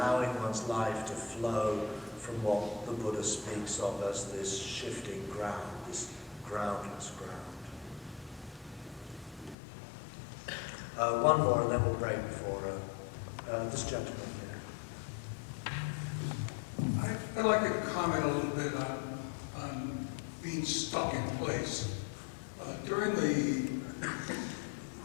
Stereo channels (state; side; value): drops out; right; at 9.6 s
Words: one's life to flow from what the Buddha speaks of as this shifting ground, this groundless ground. One more and then we'll break for this gentleman here. I'd like to comment a little bit on being stuck in place. During the